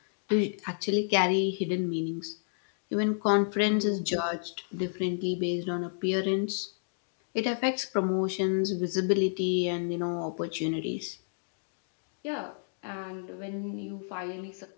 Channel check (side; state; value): right; silent; digital silence